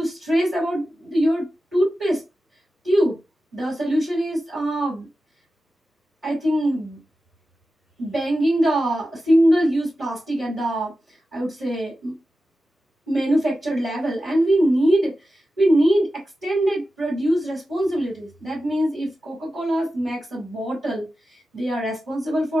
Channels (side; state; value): both; normal; correlation 0.93